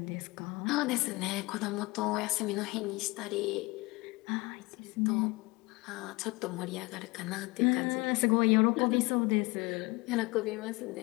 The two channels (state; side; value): quieter; right; 24.1 dB